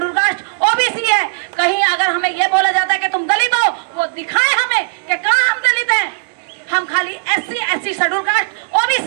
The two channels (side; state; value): left; silent; digital silence